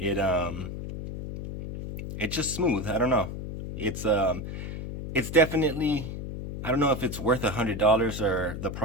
just smooth. I don't know. It's definitely, I don't know if it's worth $100 or the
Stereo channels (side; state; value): left; noise; hum, 7 dB below the sound